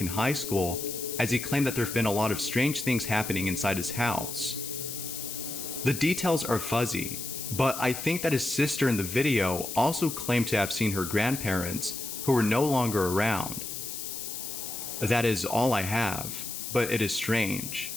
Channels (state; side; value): noise; left; hiss, 6 dB below the sound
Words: in high school, as he claimed that there have been a lot of strange things happening inside his house. The details are fuzzy, But I think that his sister in the video also claimed to have seen her grandparents who were no longer around. That is all I have, but it is strange.